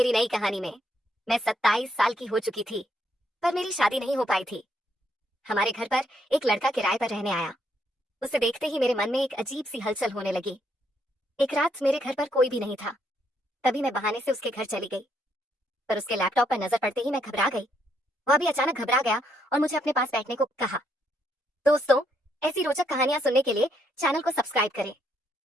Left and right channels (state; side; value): normal; both; correlation 0.74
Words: नई कहानी में। मैं 27 साल की हो चुकी थी, पर मेरी शादी नहीं हो पाई थी। हमारे घर पर एक लड़का किराए पर रहने आया। उसे देखते ही मेरे मन में एक अजीब सी हलचल होने लगी। एक रात मेरे घर पर कोई भी नहीं था, तभी मैं बहाने से उसके घर चली गई, पर उसके लैपटॉप पर नजर पड़ते ही मैं घबरा गई। वह भी अचानक घबरा गया और मुझे अपने पास बैठने को कहा। दोस्तों, ऐसी रोचक कहानियां सुनने के लिए चैनल को सब्सक्राइब करें।